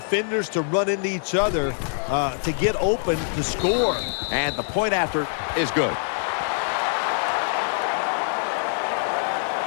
to run into each other to get open to score. And the point after is good.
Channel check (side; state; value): right; silent; digital silence